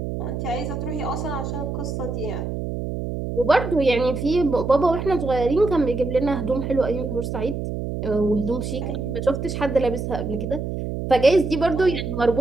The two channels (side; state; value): right; noise; hum, 4 dB below the sound